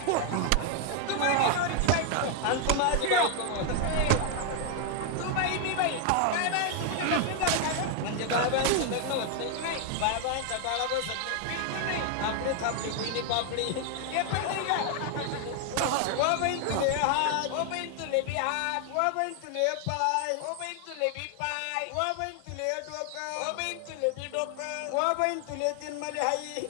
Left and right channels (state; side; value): different; both; correlation 0.00